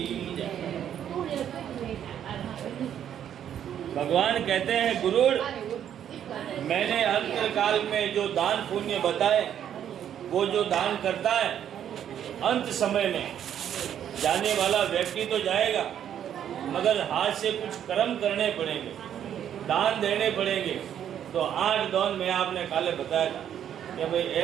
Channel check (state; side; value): quieter; left; 9.7 dB